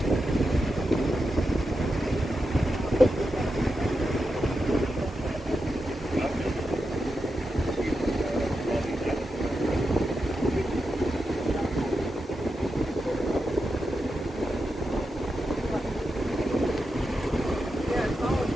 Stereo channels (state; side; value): normal; both; correlation 0.88